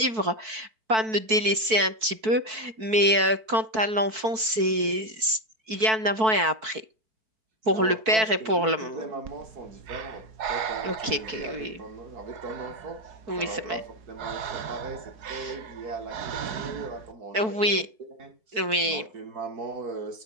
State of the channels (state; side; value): late; left; 4.5 ms